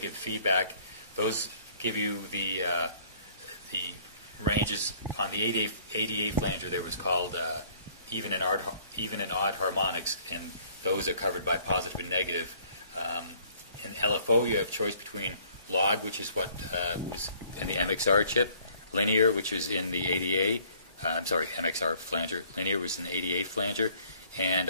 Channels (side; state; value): both; inverted; correlation -0.59